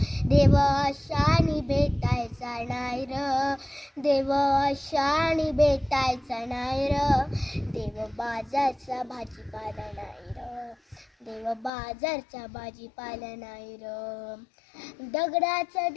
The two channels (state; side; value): drops out; right; at 11.7 s